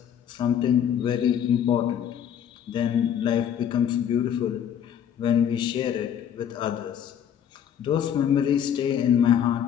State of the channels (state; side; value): quieter; right; 9.1 dB